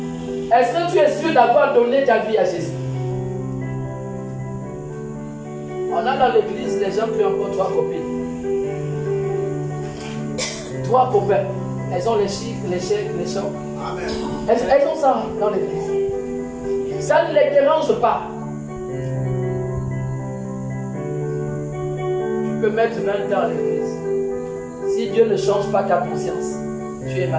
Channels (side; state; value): both; identical; correlation 1.00